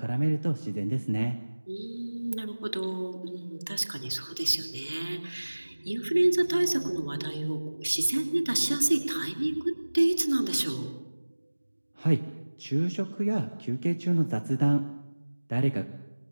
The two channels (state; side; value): inverted; both; correlation -1.00